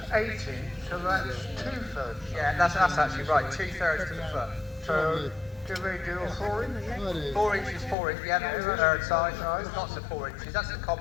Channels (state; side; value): drops out; right; at 8.0 s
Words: 80, so that's 2/3. Yeah, that's actually right, 2/3 to the foot. So, do we do a 4-inch? 4 inches, 4 inches, yeah, that's the third size. There's lots of 4 inches, that's the